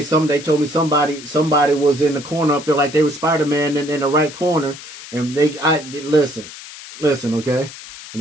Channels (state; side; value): noise; left; hiss, 15 dB below the sound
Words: they told me somebody was in the corner up there like they were Spider-Man in the right corner, and listen, okay? And